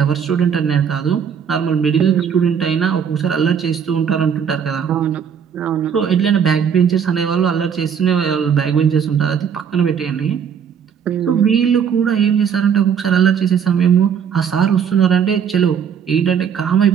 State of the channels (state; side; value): quieter; left; 7.6 dB